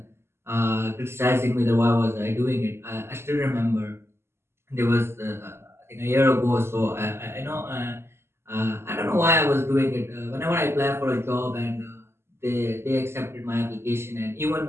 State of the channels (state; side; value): late; left; 0.12 ms